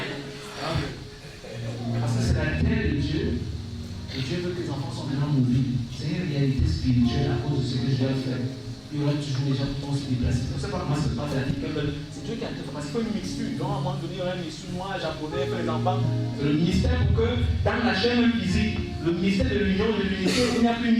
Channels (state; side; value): identical; both; correlation 1.00